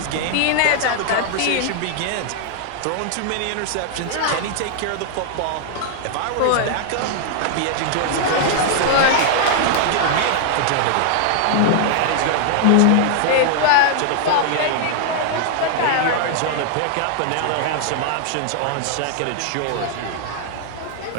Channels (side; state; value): both; different; correlation -0.01